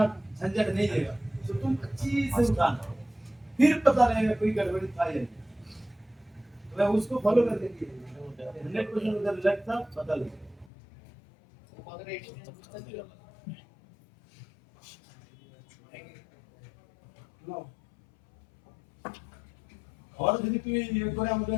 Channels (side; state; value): right; drops out; at 10.7 s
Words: झंझट नहीं देगा, तो तुम अच्छी से उठाना, फिर पता रहेगा कोई गड़बड़ी था या नहीं, मैं उसको फॉलो कर देंगे 100% उधर लगता पता लगेगा। আর যদি তুমি ইয়ে করে আমাদের